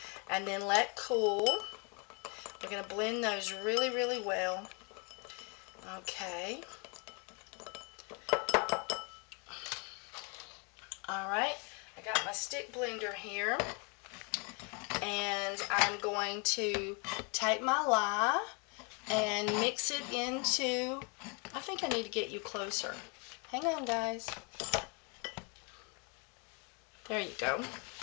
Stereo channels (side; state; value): right; quieter; 33.8 dB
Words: and then let cool. We're going to blend those really, really well. Okay. Alright, I got my stick blender here, and I'm going to take my lye and mix it into, I think I need to get you closer. Hang on, guys. There you go.